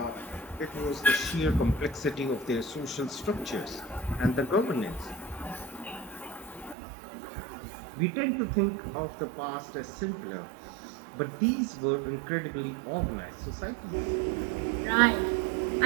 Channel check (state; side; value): drops out; left; at 6.8 s